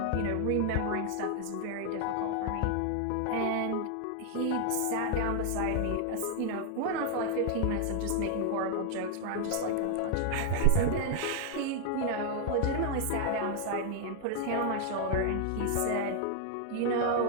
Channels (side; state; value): both; different; correlation 0.00